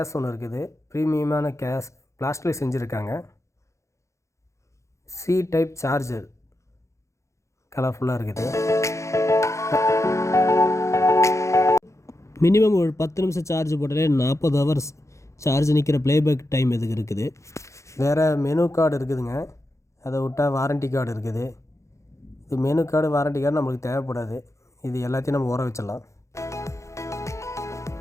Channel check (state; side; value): late; right; 0.14 ms